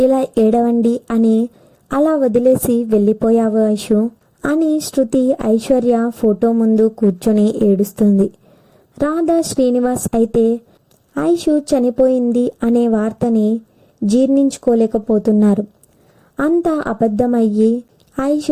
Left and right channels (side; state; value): both; identical; correlation 1.00